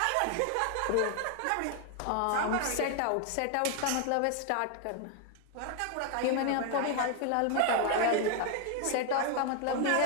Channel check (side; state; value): both; different; correlation 0.01